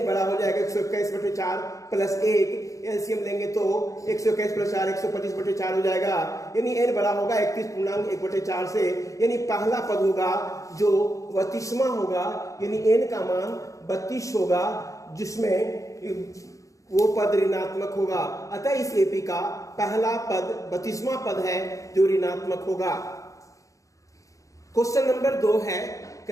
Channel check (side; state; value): right; late; 0.16 ms